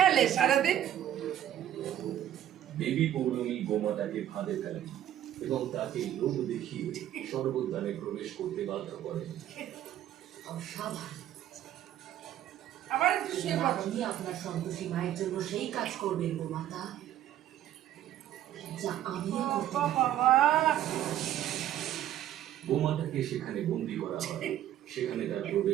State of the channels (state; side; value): quieter; left; 11.8 dB